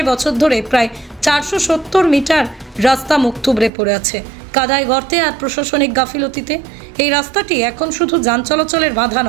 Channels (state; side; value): drops out; left; at 3.7 s